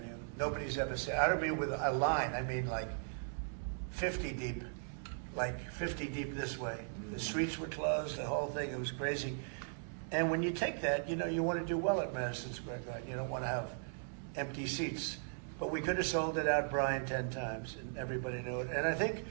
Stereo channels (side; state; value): left; silent; digital silence